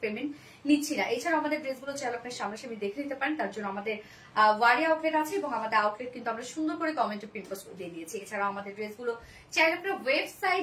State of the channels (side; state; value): both; identical; correlation 1.00